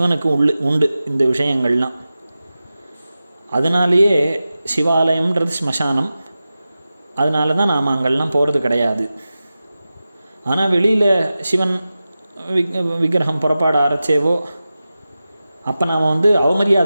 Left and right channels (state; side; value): inverted; both; correlation -0.94